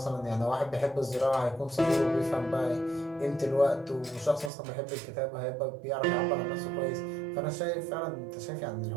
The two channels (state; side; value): drops out; left; at 4.5 s